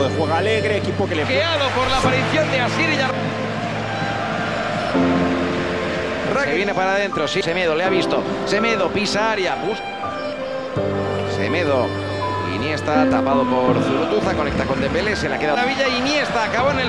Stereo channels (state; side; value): identical; both; correlation 1.00